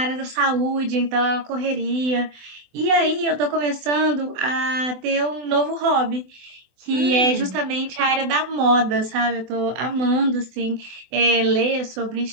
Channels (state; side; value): late; left; 24 ms